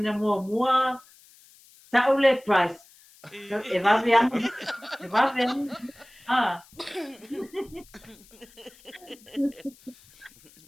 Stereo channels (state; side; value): noise; left; hiss, 26 dB below the sound